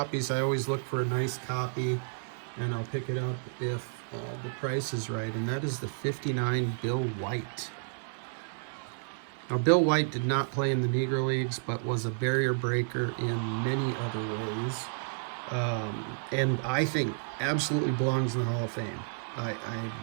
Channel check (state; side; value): silent; left; 57 dB below the other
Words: I always look for a nice copy, and I'll pick it up if the price is right, and that is the 59 Bill White. Now, Bill White did not play in the Negro Leagues, but was a barrier breaker in many other ways, and I think absolutely belongs in the Hall of Fame.